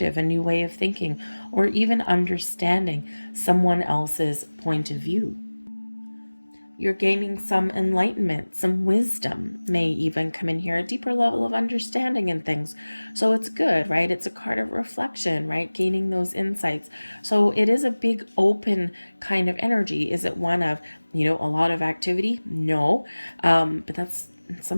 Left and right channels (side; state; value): both; inverted; correlation -1.00